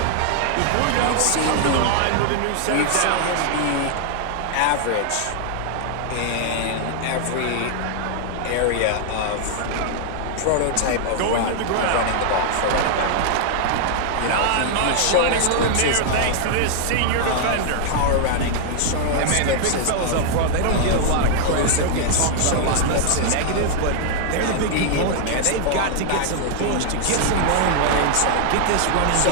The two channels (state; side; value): different; both; correlation 0.00